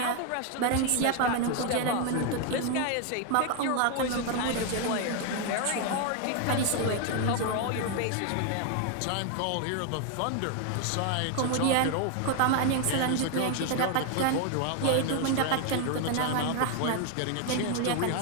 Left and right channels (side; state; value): both; different; correlation 0.01